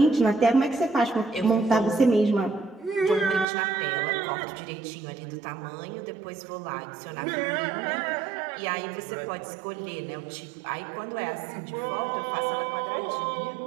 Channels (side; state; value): left; drops out; at 3.5 s